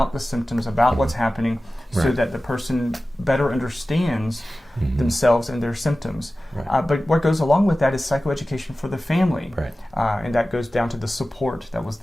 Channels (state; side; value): normal; both; correlation 0.96